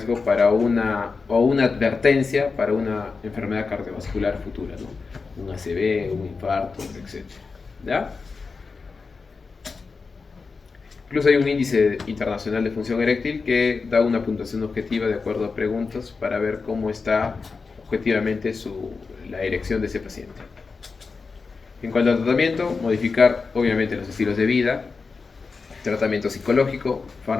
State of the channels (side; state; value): right; quieter; 4.6 dB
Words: para una advertencia para una enfermedad cardiovascular futura, ¿no? Un ACV, un infarto, etc. ¿Ya? Incluso hay un índice internacional de función eréctil que da una puntuación objetiva de acuerdo a preguntas para ver cómo está objetivamente la erección de ese paciente. En cuanto al tratamiento, modificar obviamente los estilos de vida, tratamiento psicológico,